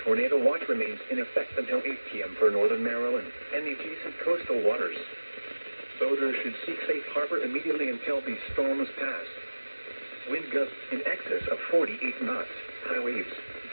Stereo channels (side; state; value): both; inverted; correlation -1.00